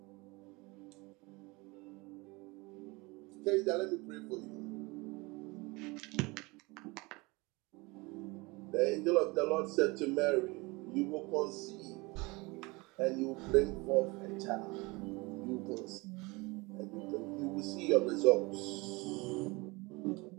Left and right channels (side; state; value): left; quieter; 25.1 dB